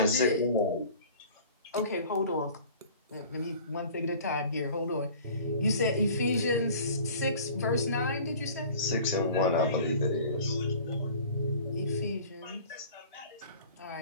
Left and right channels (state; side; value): inverted; both; correlation -0.45